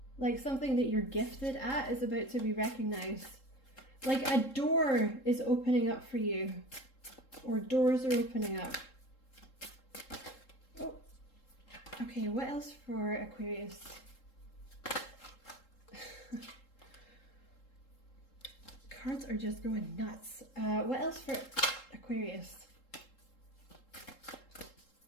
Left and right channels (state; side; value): late; right; 3.7 ms